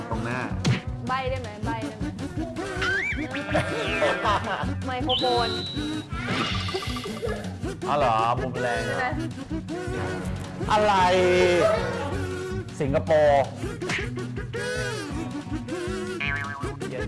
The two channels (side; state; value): both; identical; correlation 1.00